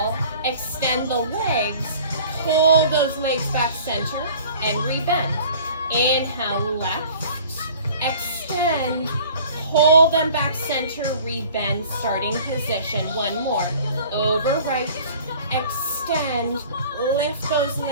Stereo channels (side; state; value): both; inverted; correlation -0.48